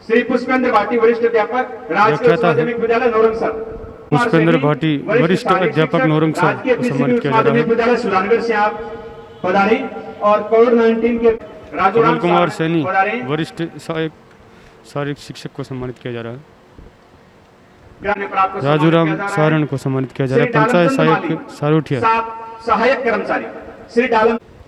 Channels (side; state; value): both; identical; correlation 1.00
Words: श्री पुष्पेंद्र भाटी वरिष्ठ अध्यापक राजकीय उच्च व्याख्याता है। माध्यमिक विद्यालय नौरंगसर। पुष्पेंद्र भाटी वरिष्ठ अध्यापक नौरंगसर राजकीय को पीसीबी सम्मानित उच्च किया जा रहा माध्यमिक है विद्यालय सुजानगढ़ से आप पधारी और कोविड-19 के कमल कुमार सैनी पधारी। वरिष्ठ सहायक शारीरिक शिक्षक को सम्मानित किया जा रहा है ग्राम्य प्राप्त को राजूराम सम्मानित किया जा रहा है। सारण को सम्मानित किया जा रहा है श्री पंचायत डालमचंद सहायक माली, सारोठिया सहायक कर्मचारी श्री